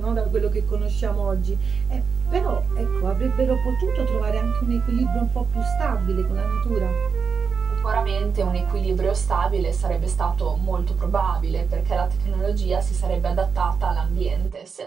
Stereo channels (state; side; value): quieter; left; 5.8 dB